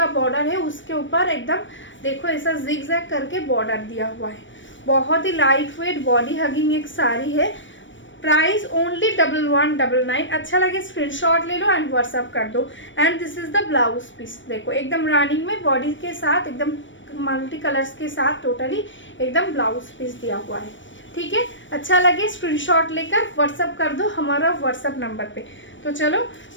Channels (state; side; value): late; right; 0.55 ms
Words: बॉर्डर है, उसके ऊपर एकदम देखो ऐसा जिगजैग करके बॉर्डर दिया हुआ है। बहुत ही लाइट वेट बॉडी हगिंग एक साड़ी है। Price only 1199। अच्छा लगे स्क्रीनशॉट ले लो एंड व्हाट्सअप कर दो। And this is the blouse piece. देखो एकदम रनिंग में बॉडी के साथ एकदम मल्टी कलर्स के साथ टोटली एकदम ब्लाउज पीस दिया हुआ है। ठीक है, अच्छा लगे स्क्रीनशॉट लेकर व्हाट्सअप कर दो हमारा व्हाट्सअप नंबर पे। तो चलो